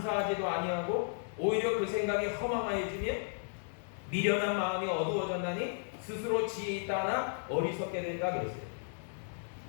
아니하고 오히려 그 생각이 허망하여지며 미련한 마음이 어두워졌나니 스스로 지혜 있다 하나 어리석게 된다 그랬어요.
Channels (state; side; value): silent; right; digital silence